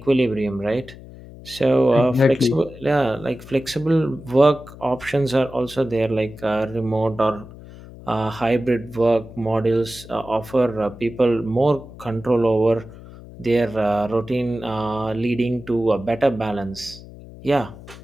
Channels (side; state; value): left; noise; hum, 17 dB below the sound